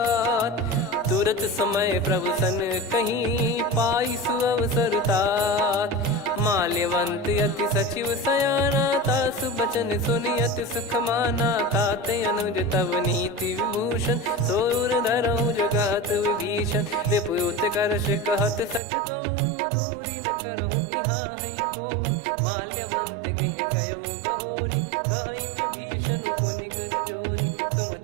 तुरत समय प्रभु सन कहीं पाई सुअवसर तात माल्यवंत अति सचिव सयाना, तासु बचन सुनि अति सुख माना। ताते अनुज तव नीति विभूषण, सोर धरहु जगत विभीषण। विपुत करश कहत सठ दो, दूरी न करहु इहाँ है को। माल्यवंत गृह गयो बहोरी, कहीं विभीषण पुनि कर जोरी।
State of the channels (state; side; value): drops out; left; at 18.8 s